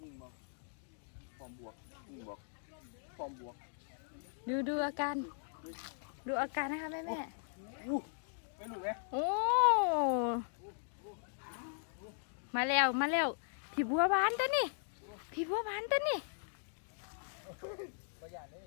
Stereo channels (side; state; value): right; silent; digital silence